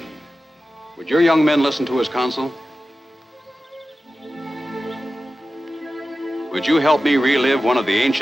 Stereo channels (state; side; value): normal; both; correlation 0.94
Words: Would your young men listen to his counsel? Would you help me relive one of the